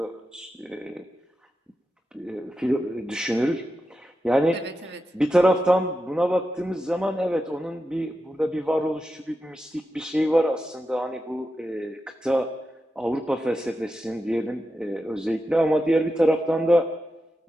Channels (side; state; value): both; normal; correlation 0.89